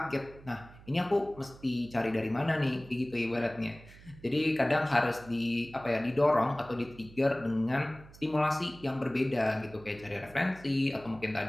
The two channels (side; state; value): right; noise; hum, 20 dB below the sound